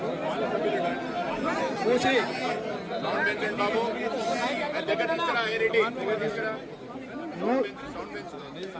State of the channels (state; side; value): identical; both; correlation 1.00